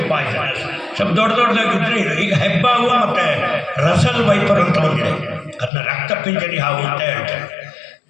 ಪಾಯ್ಸನಸ್, ಸ್ವಲ್ಪ ದೊಡ್ಡದಾಗಿದ್ದರೆ ಇದು. ಈಗ ಹೆಬ್ಬಾವು ಮತ್ತು ರಸಲ್ ವೈಪರ್ ಅಂತ ಬಂದಿದೆ, ಅದನ್ನ ರಕ್ತಪಿಂಜರಿ ಹಾವು ಅಂತ ಹೇಳ್ತಾರೆ.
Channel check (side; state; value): right; drops out; at 5.7 s